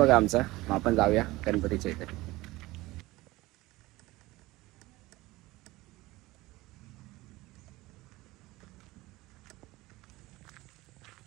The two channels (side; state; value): left; quieter; 19.6 dB